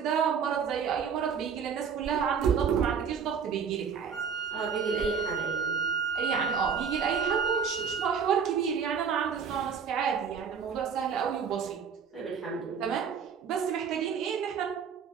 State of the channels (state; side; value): quieter; left; 6.7 dB